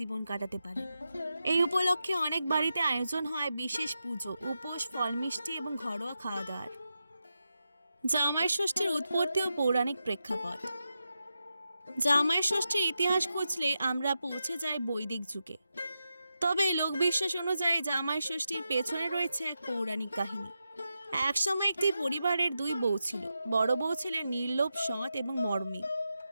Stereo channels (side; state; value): both; inverted; correlation -0.89